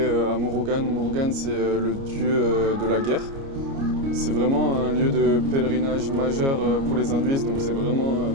à Murugan. Murugan c'est le dieu de la guerre. C'est vraiment un lieu de pèlerinage majeur pour les hindouistes, donc c'est vraiment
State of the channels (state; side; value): late; left; 29 ms